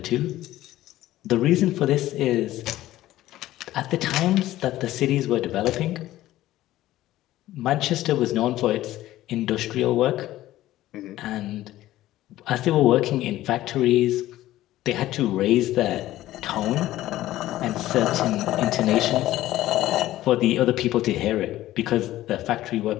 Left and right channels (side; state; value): right; quieter; 15.0 dB